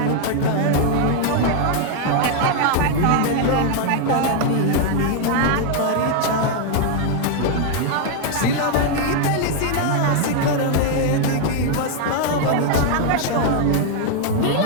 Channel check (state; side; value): different; both; correlation 0.01